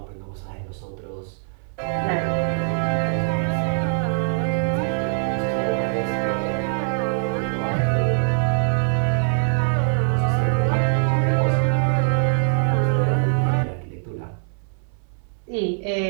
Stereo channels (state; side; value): silent; left; 61 dB below the other